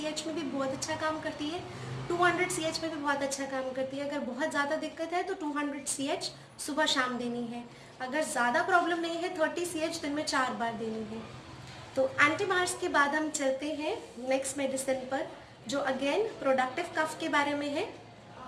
में भी बहुत अच्छा काम करती है, 200 CH में भी बहुत अच्छा काम करती है। अगर बहुत ज़्यादा दिक्कत है तो 200 CH सुबह शाम देनी है। अगर ज़्यादा प्रॉब्लम नहीं है 30 CH दिन में 4 बार देनी है। तो एंटीमार्स के बाद हम चलते हैं नेक्स्ट मेडिसिन पर, जो अगेन प्रोडक्टिव कफ के बारे में है।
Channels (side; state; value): both; identical; correlation 1.00